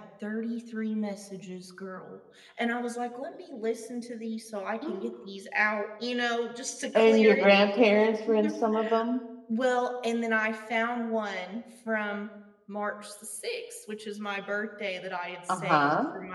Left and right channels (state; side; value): identical; both; correlation 1.00